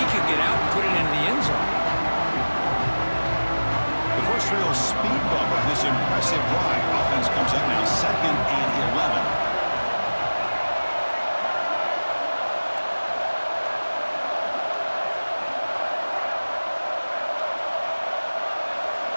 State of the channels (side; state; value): both; inverted; correlation -1.00